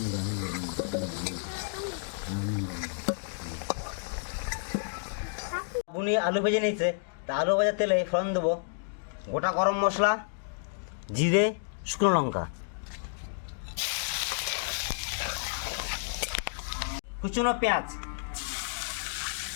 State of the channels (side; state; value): right; silent; digital silence